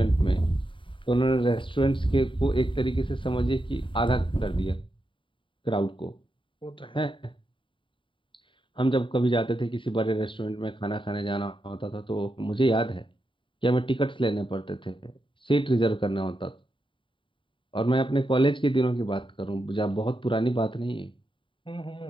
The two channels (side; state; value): right; late; 0.25 ms